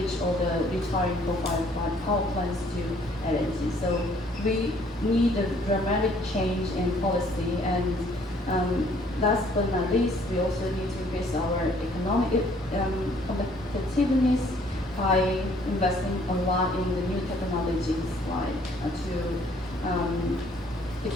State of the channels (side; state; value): both; normal; correlation 0.61